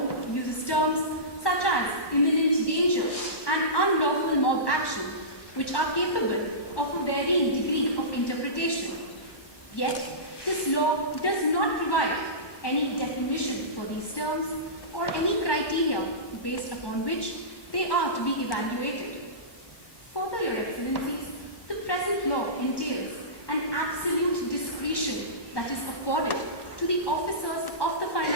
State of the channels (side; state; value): right; late; 1.1 ms